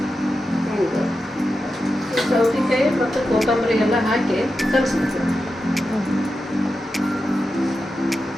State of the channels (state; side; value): normal; both; correlation 0.90